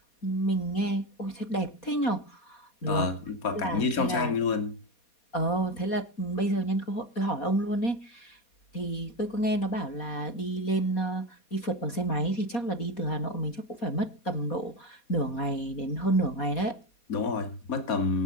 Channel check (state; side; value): late; right; 4.2 ms